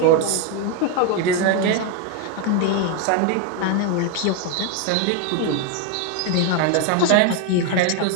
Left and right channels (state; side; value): different; both; correlation 0.01